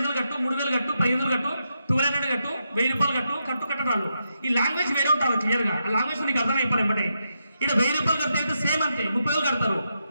కట్టు, 3,000 కట్టు, 1,500 కట్టు, 1,200 కట్టు, 1,000 రూపాయలు కట్టు కట్టడాలు. ఈ లాంగ్వేజ్ వేరే ఉంటారు క్లియర్ గా. ఆ లాంగ్వేజ్ నీకు అర్థమైపోయి ఎంబటే. ఇక్కడ 1,000 రూపాయలు కడితే అయితే సేమ్ అంతే 30,000 కడతారు.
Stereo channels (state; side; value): inverted; both; correlation -0.84